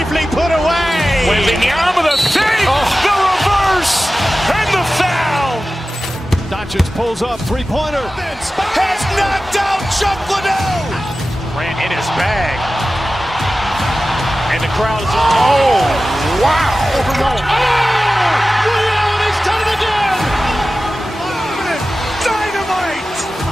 put away. Waving the arm of the save, the reverse, and the foul. Doncic pulls up, three-pointer. Has knocked out Chuck Liddell. Grant in his bag. And the crowd is, oh, wow. Oh! Reality's done it again! Dynamite!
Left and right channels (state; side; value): normal; both; correlation 0.95